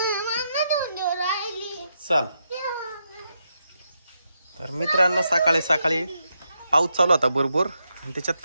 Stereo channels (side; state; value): both; inverted; correlation -0.83